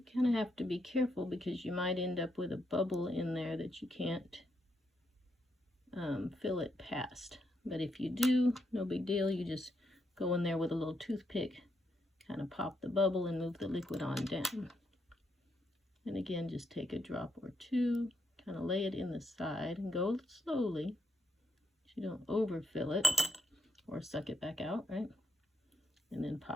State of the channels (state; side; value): normal; both; correlation 0.78